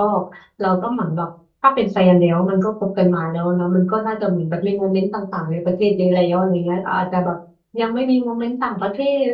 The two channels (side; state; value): both; identical; correlation 1.00